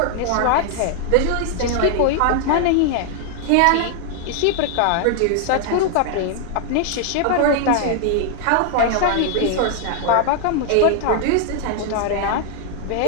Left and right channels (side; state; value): both; different; correlation 0.00